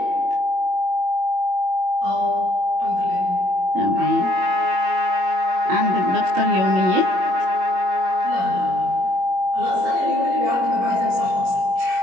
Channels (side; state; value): left; late; 21 ms